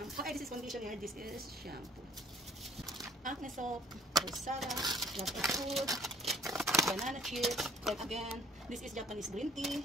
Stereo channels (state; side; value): normal; both; correlation 0.56